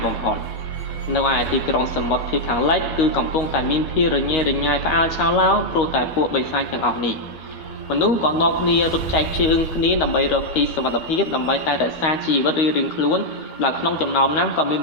បំផុតនៅឯទីក្រុងសមុទ្រភាគខាងលិចគឺកំពុងតែមានភាពរញ៉េរញ៉ៃផ្អើលឆៅឡោព្រោះតែពួកបិសាចទាំងអស់នេះមនុស្សក៏នាំគ្នារត់ចែកជើងគ្នាដើម្បីរកទីសុវត្ថិភាពដើម្បីតែរក្សាជីវិតរៀងៗខ្លួនដែលក្នុងចំណោមនោះក៏មាន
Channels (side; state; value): right; late; 13 ms